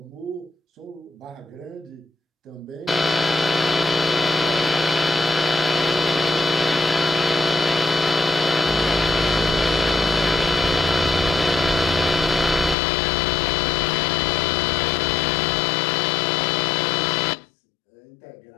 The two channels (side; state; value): right; drops out; at 12.8 s